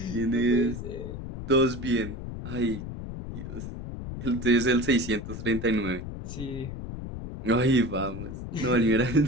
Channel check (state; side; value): noise; left; rumble, 8 dB below the sound